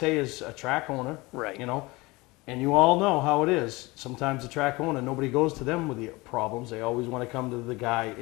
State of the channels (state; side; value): quieter; right; 22.9 dB